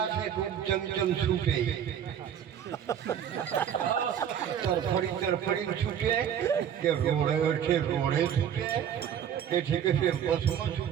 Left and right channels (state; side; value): quieter; left; 9.1 dB